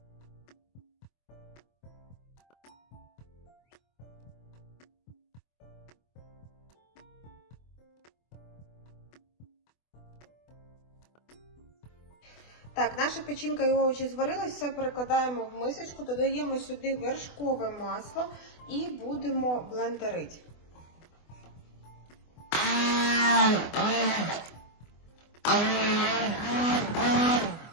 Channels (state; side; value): late; right; 24 ms